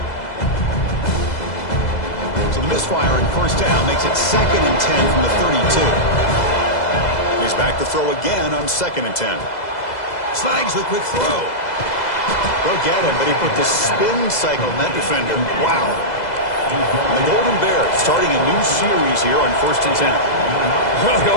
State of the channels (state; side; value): late; right; 2.0 ms